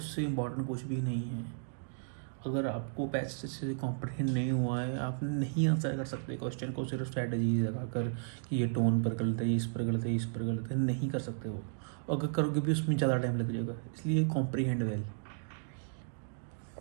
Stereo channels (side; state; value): left; silent; digital silence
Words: इम्पॉर्टेंट कुछ भी नहीं है। अगर आपको पैसे से कॉम्प्रिहेंड नहीं हुआ है, आप नहीं आंसर कर सकते क्वेश्चन को सिर्फ स्ट्रैटेजीज लगा कर कि ये टोन पर गलत है, इस पर गलत है, इस पर गलत है, नहीं कर सकते वो। अगर करोगे भी उसमें ज़्यादा टाइम लग जाएगा, इसलिए कॉम्प्रिहेंड वेल।